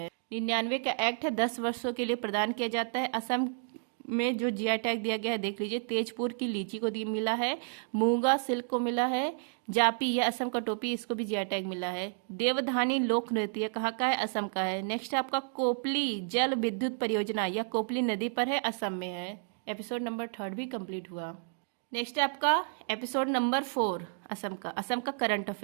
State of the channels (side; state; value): left; silent; digital silence